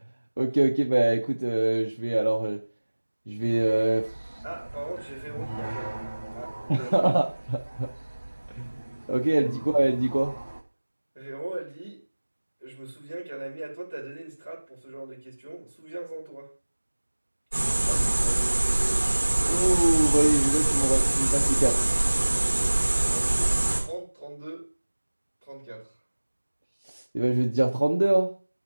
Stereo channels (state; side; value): inverted; both; correlation -1.00